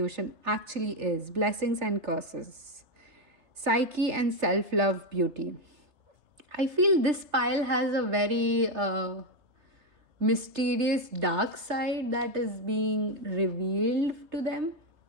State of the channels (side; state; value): left; late; 3.3 ms